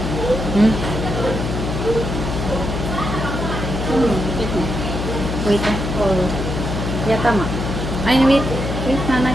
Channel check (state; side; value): noise; left; hum, 3 dB below the sound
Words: Hmm? Wait, ah. Oh. Yeah, tama. Ay, wait. Wait, nanay.